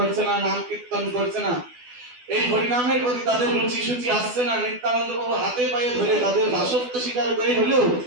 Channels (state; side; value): late; left; 12 ms